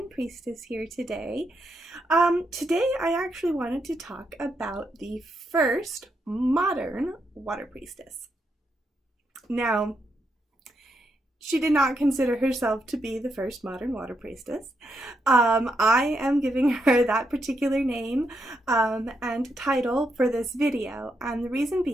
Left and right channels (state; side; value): normal; both; correlation 0.81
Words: Priestess here today. Today I actually wanted to talk about the first modern Water Priestess. Now, she did not consider herself to be the first modern Water Priestess. I am giving her that particular name and title for this video, and the reason